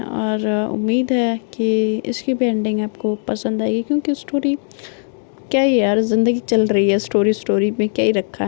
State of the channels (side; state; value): right; silent; digital silence